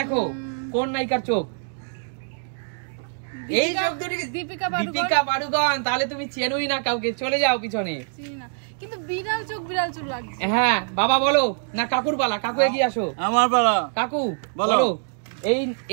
কোন নায়িকার চোখ। এই চোখ দুটি দীপিকা পাড়ুকোন। তাহলে তুমি চেনোই না কাউকে, চলে যাও পিছনে। চিনি না। কিন্তু বিড়াল চোখ বিড়াল চোখ লাগছে। হ্যাঁ বাবা বলো না কাকুর পালা, কাকু এগিয়ে আসো। আমার পালা। কাকু বলো। বলো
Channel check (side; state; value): left; silent; digital silence